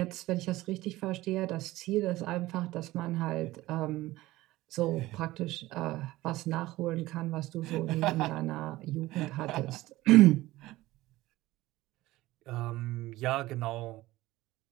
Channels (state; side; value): quieter; left; 17.7 dB